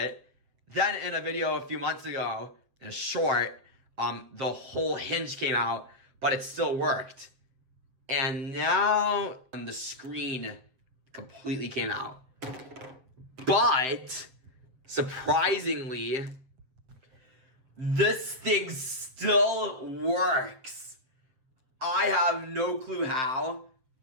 Then in a video a few months ago, in a short, the whole hinge came out, but it still worked. And now the screen completely came out. But surprisingly, this thing still works. I have no clue how,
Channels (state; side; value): late; left; 7.6 ms